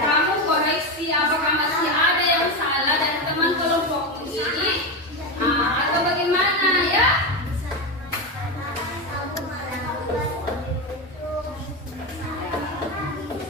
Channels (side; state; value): both; normal; correlation 0.15